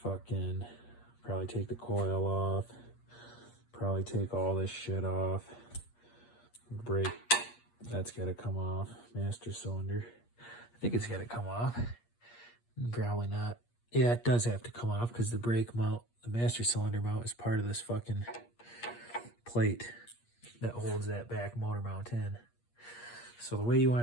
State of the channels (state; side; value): late; right; 8.5 ms